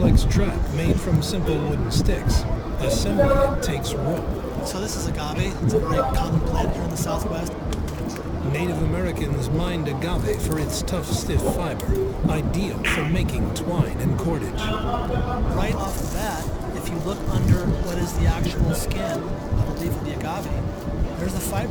trap made from simple wooden sticks. Assembling it takes rope. So this is agave. It's a very common plant here in the Southwest. Native Americans mined agave for its tough, stiff fiber, ideal for making twine and cordage. Right off the bat, if you look under what is the actual skin, I believe, of the agave, there's the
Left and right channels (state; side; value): identical; both; correlation 1.00